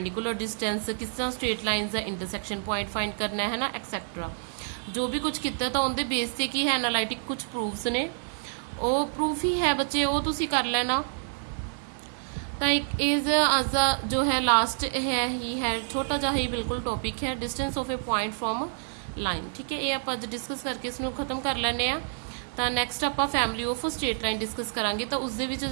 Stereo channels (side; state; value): left; silent; digital silence